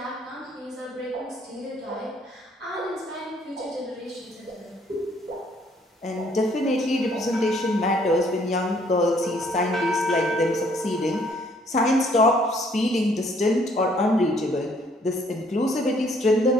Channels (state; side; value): normal; both; correlation 0.64